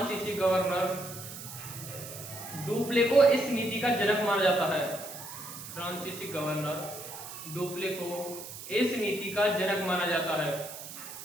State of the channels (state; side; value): noise; right; hiss, 11 dB below the sound